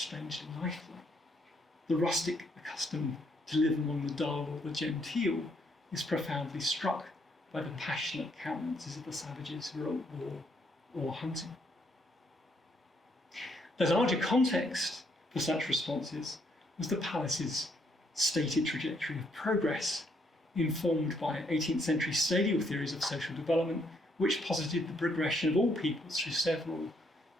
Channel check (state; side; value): normal; both; correlation 0.72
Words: lifelike. The rustic accustomed to live among the dull or the genteel is profoundly struck by the passionate countenances of the savages who are at war or hunting. The larger context for such responses was the palace's stated trajectory of progress, informed by 18th century stadial theories of social development, which posited the progression of all peoples through several,